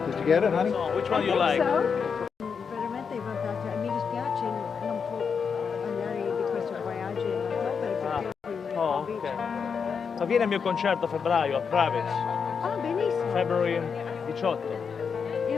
Did you get it, honey? So, which one do you like? Veramente è fantastico. Mi dispiace non può andare di questo viaggio in ottobre perché Oh, ok. Ma viene al mio concerto a febbraio a Praves. Ah, benissimo. February 18.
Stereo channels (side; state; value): right; quieter; 6.1 dB